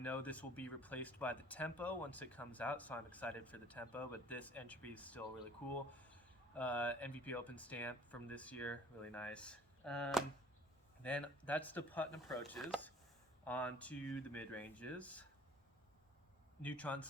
this will be replaced by the tempo once it comes out, so I'm excited for the tempo, but this entropy is still really cool. MVP Open stamp from this year, really nice. Then that's the putt and approaches. On to the mid-ranges. Neutron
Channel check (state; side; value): normal; both; correlation 0.52